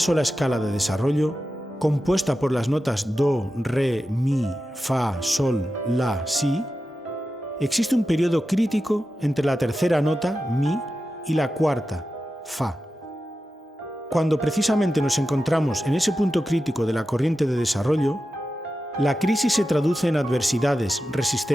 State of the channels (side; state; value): both; normal; correlation 0.92